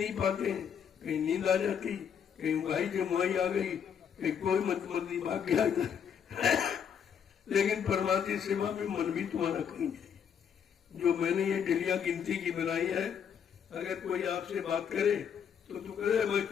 पाते हैं, कहीं नींद आ जाती, कहीं उंगाई जमुआई आ गई, कहीं कोई मंदी भाग गया लेकिन परमार्थी सेवा में मन भी तुम्हारा कहीं नहीं। जो मैंने ये डलिया गिनती की बनाई है, अगर कोई आपसे बात करे तो तू कहे मैं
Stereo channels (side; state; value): right; quieter; 7.8 dB